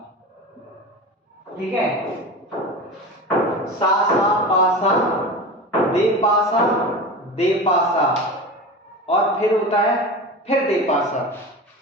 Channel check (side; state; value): both; normal; correlation 0.29